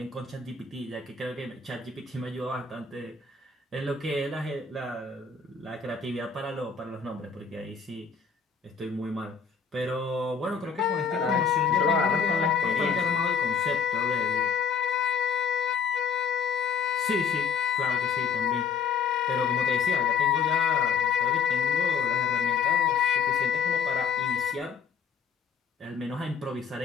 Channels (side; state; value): right; quieter; 6.2 dB